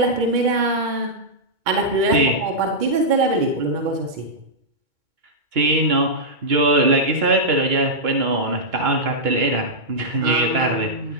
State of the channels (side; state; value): left; late; 2.2 ms